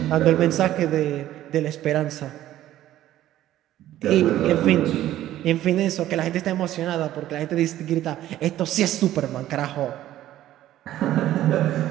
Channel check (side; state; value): left; quieter; 13.4 dB